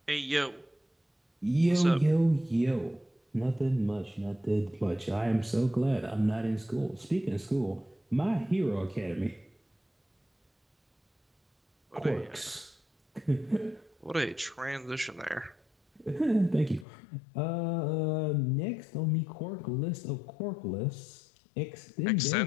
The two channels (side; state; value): right; drops out; at 16.9 s